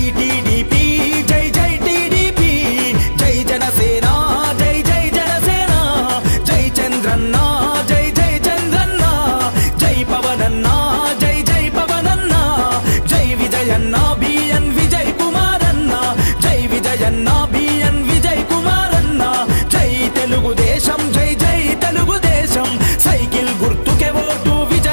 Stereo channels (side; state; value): both; inverted; correlation -1.00